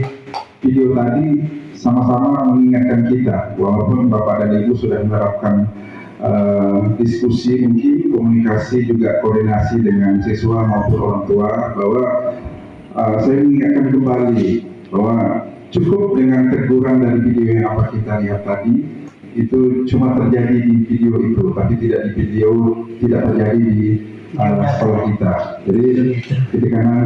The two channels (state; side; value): identical; both; correlation 1.00